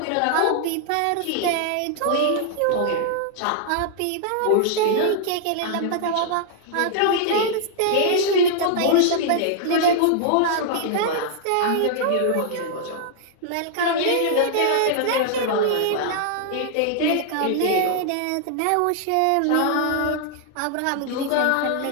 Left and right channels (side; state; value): both; different; correlation -0.01